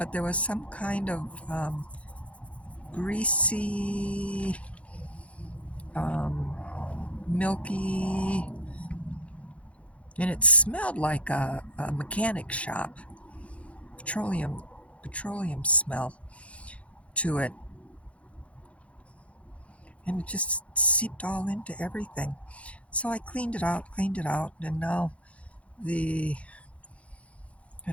there was some kind of greasy, um, milky, and it smelled like a mechanic shop, petroleum smell to it, and it just seeped all into everything. So I cleaned it out, and now the I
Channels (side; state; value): right; late; 0.063 ms